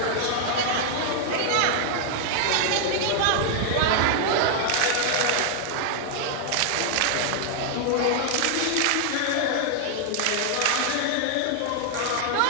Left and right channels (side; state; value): both; different; correlation 0.00